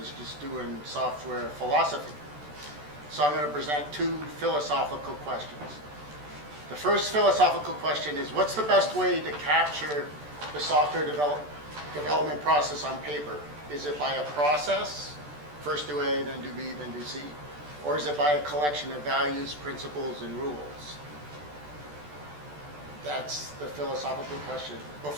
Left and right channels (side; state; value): left; late; 14 ms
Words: just doing software philosophy. So I'm going to present two philosophical questions. The first philosophical question is, what's the best way to capture the software development process on paper? Is it by a process, first do A, then do B, then do C? Or is it by a collection of values, principles, and rules? That's the philosophical question.